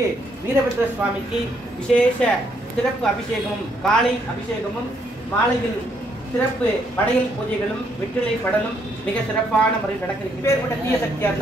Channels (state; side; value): normal; both; correlation 0.72